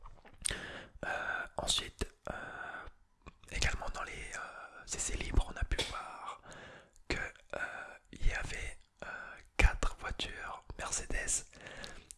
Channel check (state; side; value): identical; both; correlation 1.00